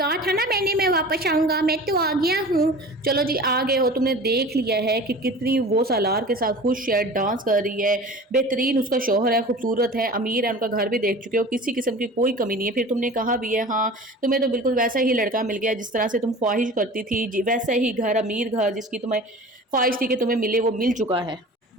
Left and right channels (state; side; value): normal; both; correlation 0.39